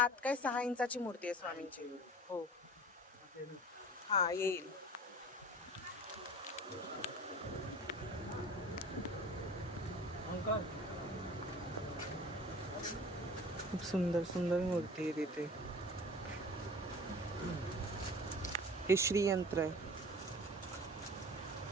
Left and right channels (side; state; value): both; normal; correlation 0.41